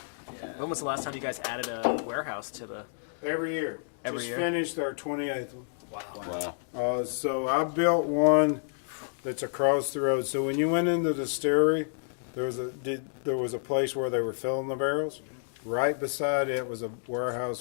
When was the last time you guys added a warehouse to the? Every year. Every Just year? finished our 28th one. Wow. So I built one that's across the road. So when you went into the distillery, there was a place where they were filling the barrels. Right beside it was a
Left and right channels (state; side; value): silent; right; digital silence